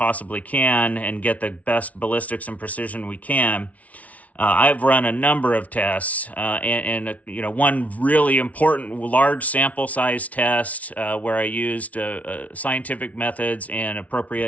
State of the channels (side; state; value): right; late; 0.068 ms